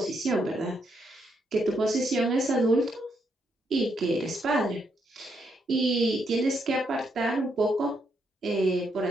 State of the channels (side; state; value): both; normal; correlation 0.77